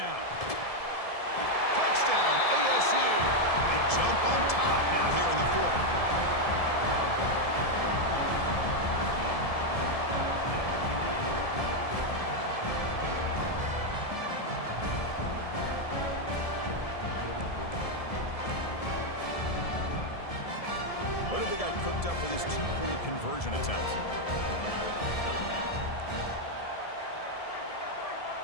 Touchdown, ASU. They jump on top now here in the fourth. What have they got cooked up for this two-point conversion attempt?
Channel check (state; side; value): late; right; 1.7 ms